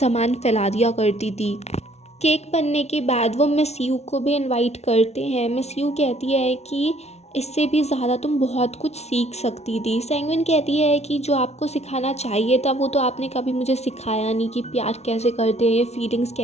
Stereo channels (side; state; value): right; late; 0.31 ms